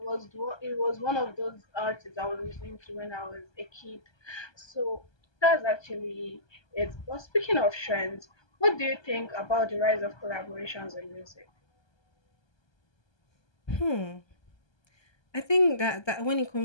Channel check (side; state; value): right; late; 1.2 ms